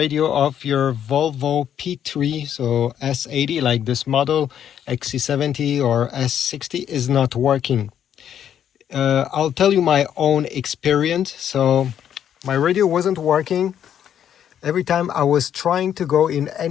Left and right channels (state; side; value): quieter; right; 9.6 dB